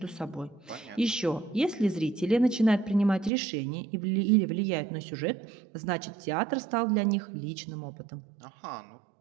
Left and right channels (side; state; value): left; drops out; at 3.3 s